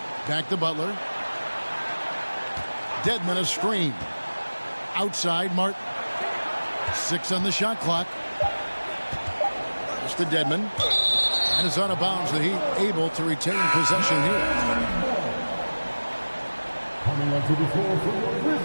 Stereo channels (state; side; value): inverted; both; correlation -1.00